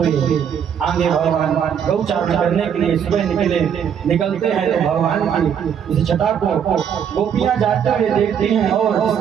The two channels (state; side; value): quieter; left; 8.2 dB